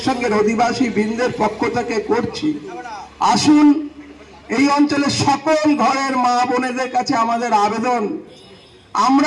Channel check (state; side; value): identical; both; correlation 1.00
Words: সংঘের অধিবাসী বৃন্দের পক্ষ থেকে করছি। আসুন, এই অঞ্চলের সকল ঘরের মা বোনেদের কাছে আমাদের আবেদন,